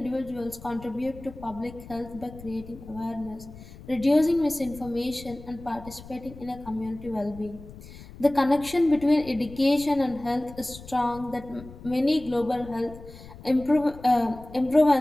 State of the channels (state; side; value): noise; left; rumble, 17 dB below the sound